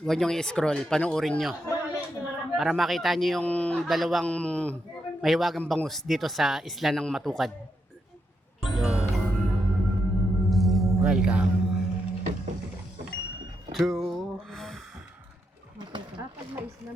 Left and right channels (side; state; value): both; normal; correlation 0.82